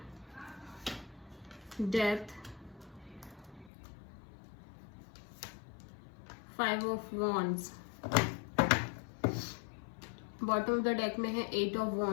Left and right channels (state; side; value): drops out; right; at 3.7 s